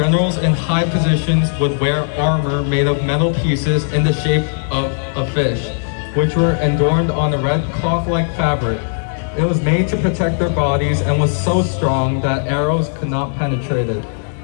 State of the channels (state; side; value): silent; right; 60 dB below the other